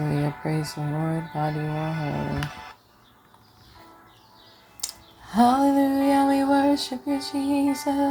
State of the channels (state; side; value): identical; both; correlation 1.00